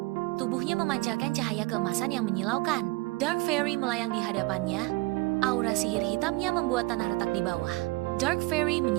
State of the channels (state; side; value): quieter; left; 22.9 dB